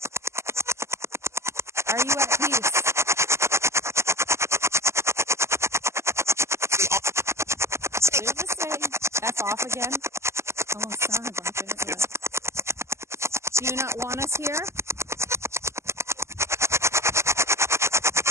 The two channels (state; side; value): late; left; 0.13 ms